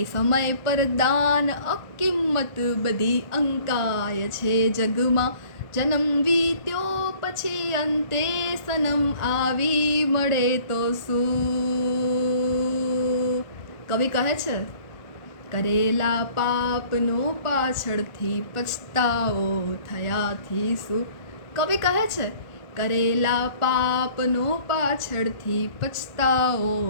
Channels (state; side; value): late; right; 1.4 ms